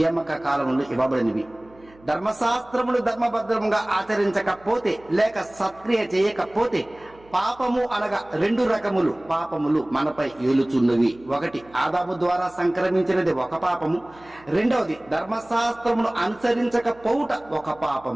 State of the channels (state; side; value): noise; right; hum, 26 dB below the sound